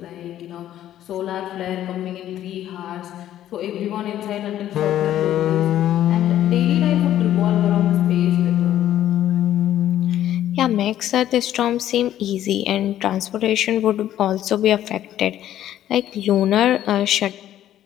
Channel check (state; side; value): quieter; right; 12.1 dB